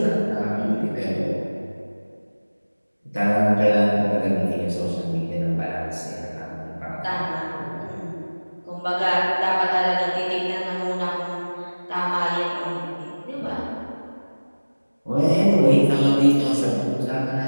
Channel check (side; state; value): both; inverted; correlation -1.00